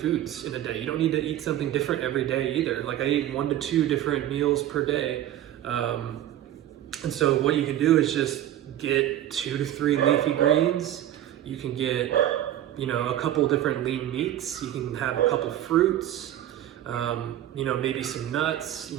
in a day. You don't need to eat something different every day either. Like, I eat 1 to 2 different meals per day. And so what you can do is just get 2 to 3 leafy greens. You can get, a couple different lean meats. You can have a couple fruits, maybe some nuts.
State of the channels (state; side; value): quieter; left; 12.3 dB